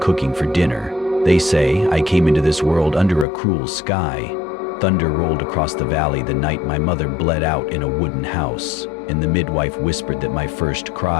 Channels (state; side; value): drops out; right; at 3.2 s